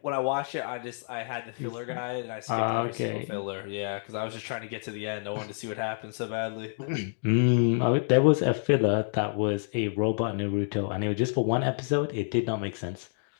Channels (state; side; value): silent; right; digital silence